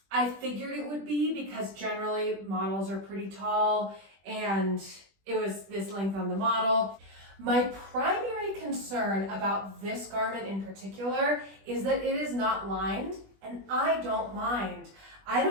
figured it would be because generally models are pretty tall and it was this length on the model. My primary concern about this garment in particular is that it is not lined, and I don't mind. I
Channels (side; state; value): left; late; 20 ms